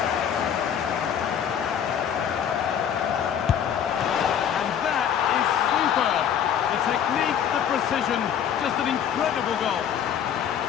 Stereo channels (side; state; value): right; quieter; 8.8 dB